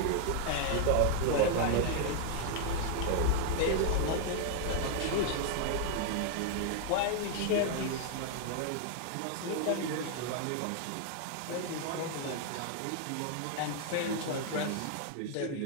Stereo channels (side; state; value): both; different; correlation 0.00